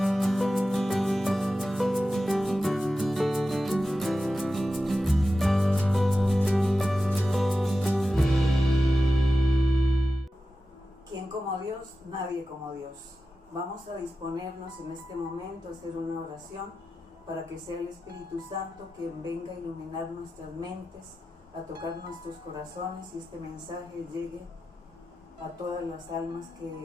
¿Quién como Dios? Nadie como Dios. Vamos a disponernos en este momento a hacer una oración para que sea el Espíritu Santo quien venga a iluminar nuestras mentes, a tocar nuestros corazones y este mensaje llegue a todas las almas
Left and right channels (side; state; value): both; normal; correlation 0.92